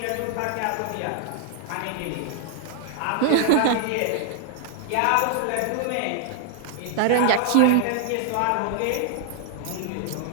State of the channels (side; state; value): both; different; correlation 0.00